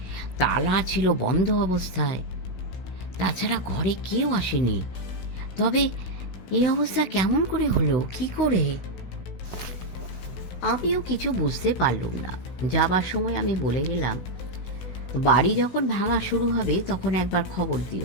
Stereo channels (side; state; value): right; late; 16 ms